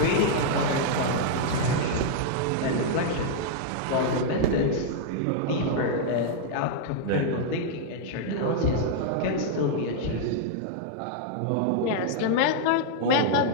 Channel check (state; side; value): different; both; correlation -0.01